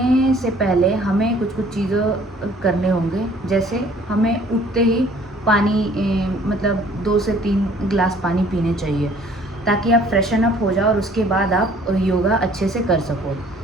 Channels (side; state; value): both; normal; correlation 0.56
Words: से पहले हमें कुछ कुछ चीज़ें करने होंगे। जैसे हमें उठते ही पानी मतलब 2 से 3 गिलास पानी पीने चाहिए, ताकि आप फ्रेशन अप हो जाओ और उसके बाद आप योगा अच्छे से कर सको।